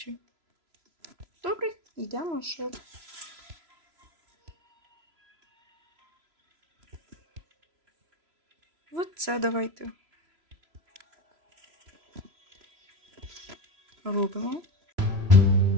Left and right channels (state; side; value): late; left; 3.0 ms